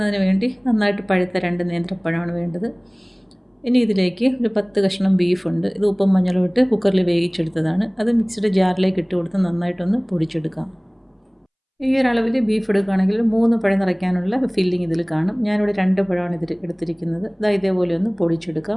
വേണ്ടി നന്നായിട്ട് പഴുത്ത 2 നേന്ത്രപ്പഴമാണ് വേണ്ടത്. ഇനി ഇതിലേക്ക് ഒരു 10 കഷ്ണം ബീഫുണ്ട്. ഇത് ഉപ്പും മഞ്ഞളും ഇട്ട് കുക്കറിൽ വേവിച്ചെടുത്തതാണ്. അത് മിക്സിയുടെ ജാറിലേക്ക് ഇട്ട് കൊടുത്ത് നന്നായിട്ടൊന്ന് പൊടിച്ചെടുക്കാം. ഈ ഒരളവിൽ ബീഫ് എടുക്കുകയാണെങ്കിൽ 3 പഴം നിറയ്ക്കാനുള്ള ഫില്ലിംഗ് ഇതിൽ കാണും. ഞാനിവിടെ 2 പഴമാണ് ഇതിൽ എടുത്തിരിക്കുന്നത്. ഇതേപോലെ ഒന്ന്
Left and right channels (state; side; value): identical; both; correlation 1.00